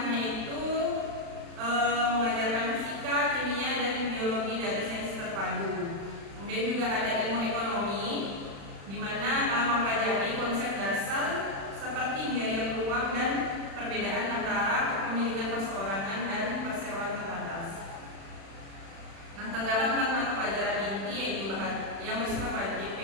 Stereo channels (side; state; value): left; late; 36 ms